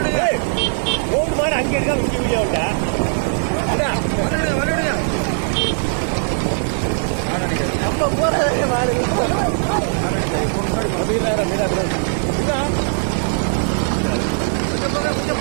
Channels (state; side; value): silent; left; digital silence